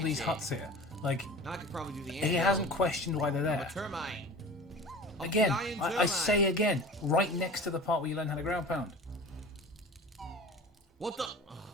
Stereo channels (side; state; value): both; normal; correlation 0.38